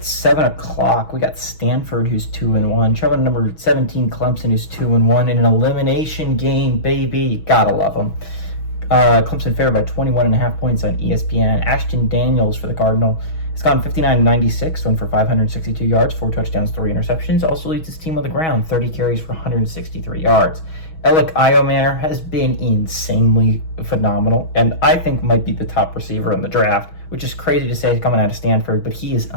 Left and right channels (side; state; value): right; late; 6.2 ms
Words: 7 o'clock, we got Stanford, who's 2-1. Traveling number 17, Clemson, who's 2-1. In an elimination game, baby. Gotta love them. Clemson favored by 21.5 points on ESPN. Ashton Daniels for the Cardinal has gone 59-96, went for 562 yards, 4 touchdowns, 3 interceptions. Also leads his team on the ground, 30 carries for 163 yards. Alec Iomayer has been insanely phenomenal, and I think might be the top receiver in the draft, which is crazy to say coming out of Stanford, but he is